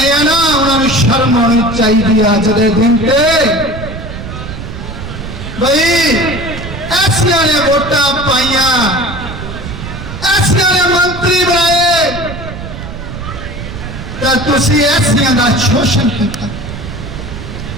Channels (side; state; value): right; noise; rumble, 9 dB below the sound